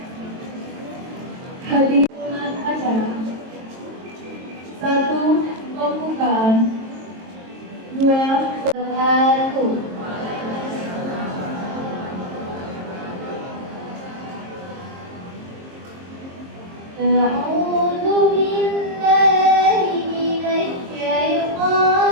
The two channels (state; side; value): late; left; 22 ms